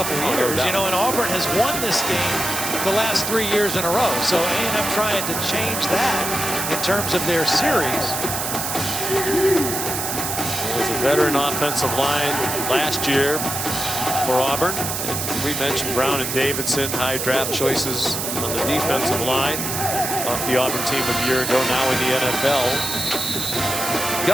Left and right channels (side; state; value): right; noise; hiss, 3 dB below the sound